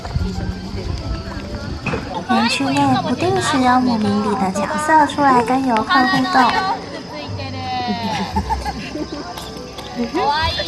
园区内不定时有姆明里的角色出来跟游客互动。かわい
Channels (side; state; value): both; identical; correlation 1.00